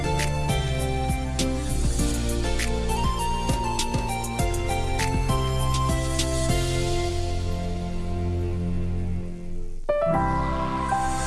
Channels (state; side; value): identical; both; correlation 1.00